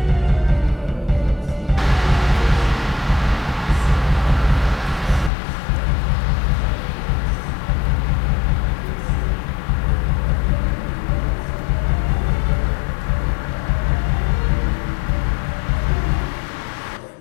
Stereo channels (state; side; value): drops out; right; at 5.3 s